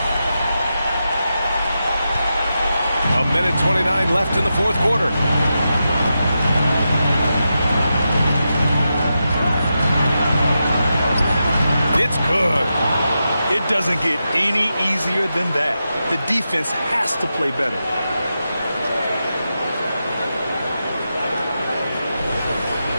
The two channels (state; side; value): inverted; both; correlation -0.88